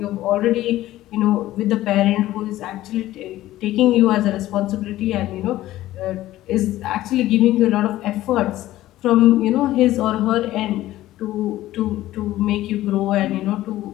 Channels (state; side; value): quieter; right; 15.2 dB